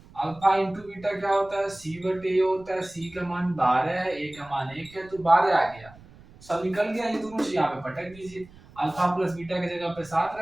अल्फा इंटू बीटा क्या होता है, सी बटे ए होता है, सी का मान 12 है, ए का मान 1 है तो 12 आ गया, सब निकल गया, ये दोनों चीज यहाँ पे पटक दीजिए, अल्फा प्लस बीटा की जगह पे 7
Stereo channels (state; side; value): noise; right; rumble, 23 dB below the sound